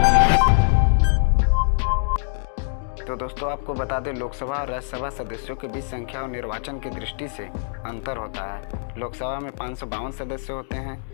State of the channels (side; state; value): right; silent; digital silence